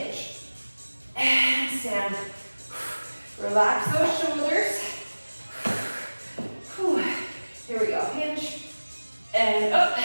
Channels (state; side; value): inverted; both; correlation -1.00